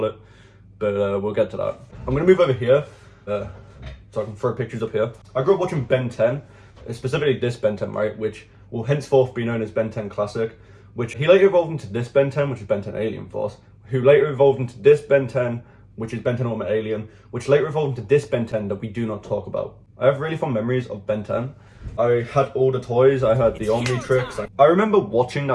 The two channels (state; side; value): identical; both; correlation 1.00